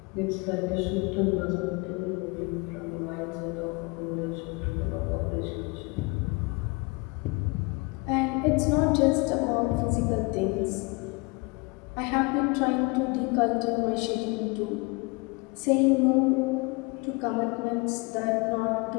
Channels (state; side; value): quieter; right; 27.9 dB